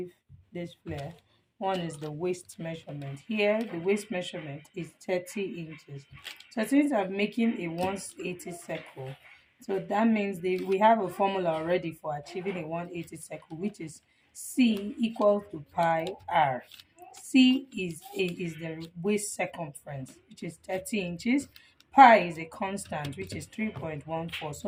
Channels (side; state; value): both; identical; correlation 1.00